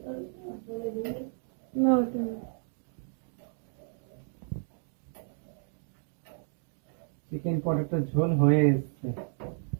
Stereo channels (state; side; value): silent; left; digital silence